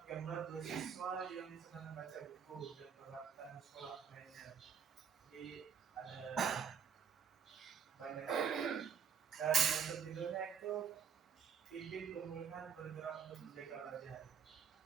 gambar dua siswa yang sedang membaca buku dan peralatan sekolah lainnya. Jadi ada banyak. Dan untuk judulnya itu pimpin pemulihan bergerak untuk menjaga wajah.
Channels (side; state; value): left; quieter; 7.2 dB